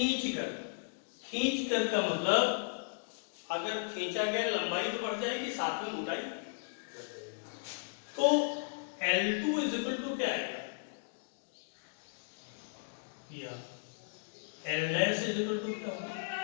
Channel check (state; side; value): silent; right; digital silence